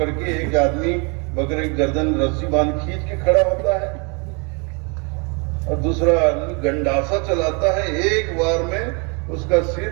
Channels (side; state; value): left; quieter; 33.4 dB